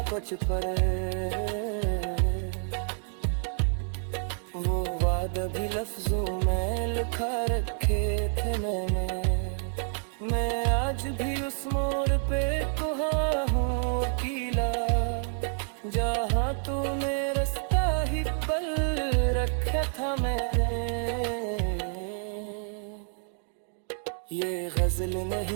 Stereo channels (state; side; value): silent; left; digital silence